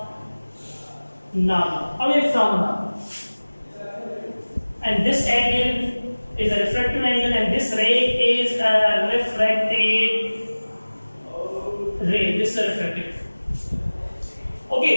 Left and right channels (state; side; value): inverted; both; correlation -1.00